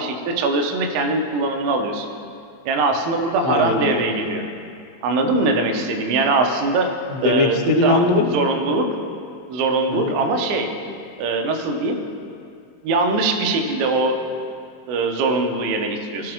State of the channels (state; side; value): late; left; 24 ms